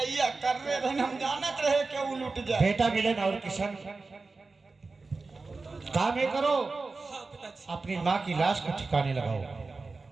कर रहे थे, हम जानत रहे कि वो लुट जाए। बेटा मिलन और किशन, काम ये करो, अपनी माँ की लाश को ठिकाने लगाओ।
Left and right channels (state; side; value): quieter; left; 3.9 dB